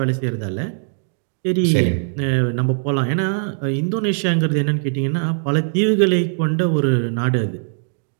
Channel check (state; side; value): silent; left; digital silence